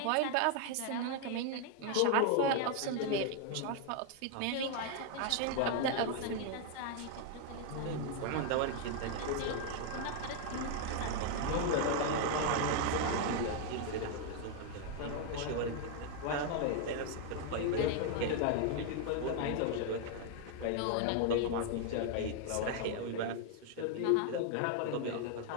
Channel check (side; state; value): both; different; correlation 0.00